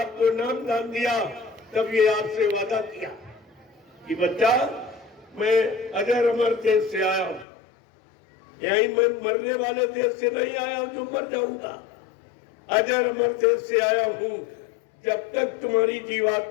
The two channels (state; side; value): drops out; right; at 7.5 s